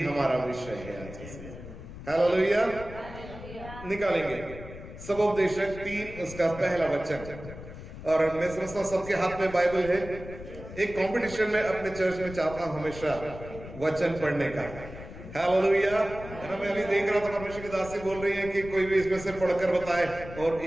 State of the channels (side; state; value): left; noise; rumble, 13 dB below the sound